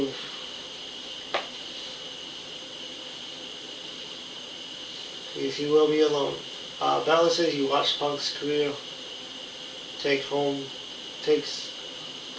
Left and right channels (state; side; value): identical; both; correlation 1.00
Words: will be alone. Balor said he watched Punk's career